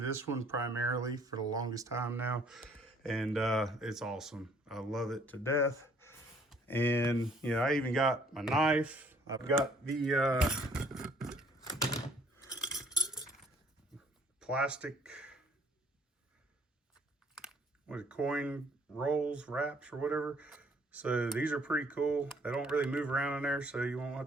one primarily for the longest time now. And it's awesome. I love it to death. And, you know, I even got my knife. I've got the plastic, coin rolls, wraps, or whatever. So these are pretty cool. They don't really move around in there, so you won't have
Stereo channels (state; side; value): normal; both; correlation 0.61